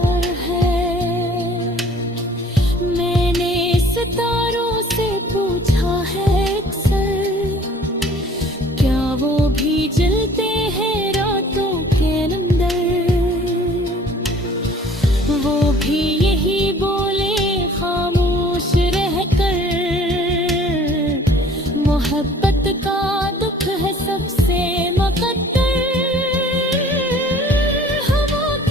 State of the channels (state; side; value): normal; both; correlation 0.52